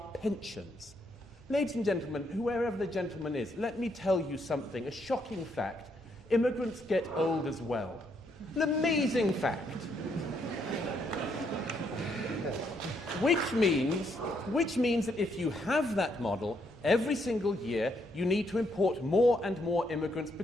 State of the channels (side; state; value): both; normal; correlation 0.74